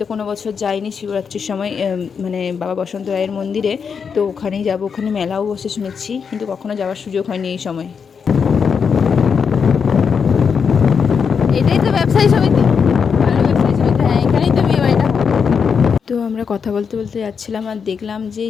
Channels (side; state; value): right; quieter; 6.3 dB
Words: কোনো বছর যাইনি শিবরাত্রির সময় মানে বাবা বসন্ত রায়ের মন্দিরে, তো ওখানেই যাবো। ওখানে মেলাও বসে শুনেছি, কিন্তু কখনো যাওয়ার সুযোগ হয়নি এই সময়। এটাই তো ব্যবসায়ী সমিতি, ভালো ব্যবসায়ী সমিতি, হ্যাঁ এখানেই তো বিয়ে বাড়িটা। তো আমরা কথা বলতে বলতে যাচ্ছিলাম আর দেখলাম যে